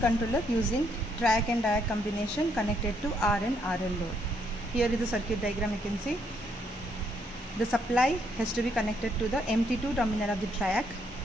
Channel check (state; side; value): normal; both; correlation 0.73